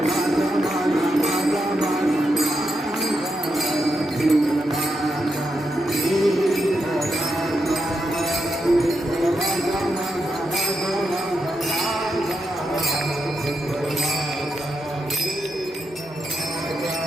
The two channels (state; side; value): normal; both; correlation 0.84